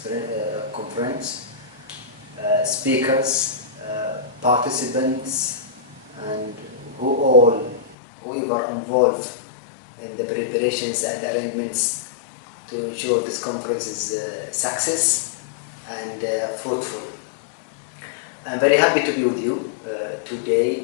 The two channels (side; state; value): right; drops out; at 8.0 s